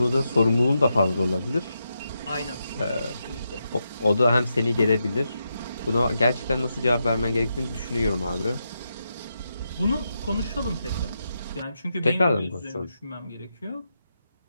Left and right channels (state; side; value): inverted; both; correlation -0.85